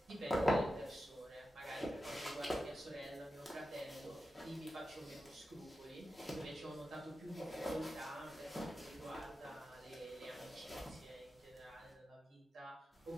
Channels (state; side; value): normal; both; correlation 0.91